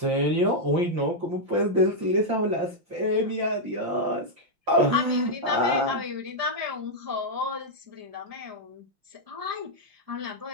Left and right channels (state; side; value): late; left; 5.8 ms